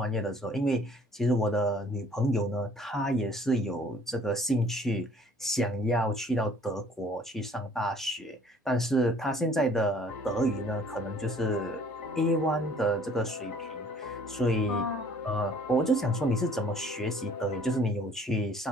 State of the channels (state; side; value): normal; both; correlation 0.56